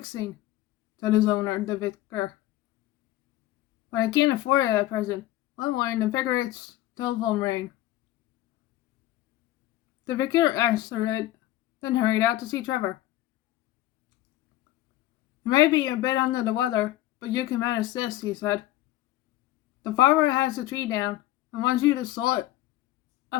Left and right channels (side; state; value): right; quieter; 15.2 dB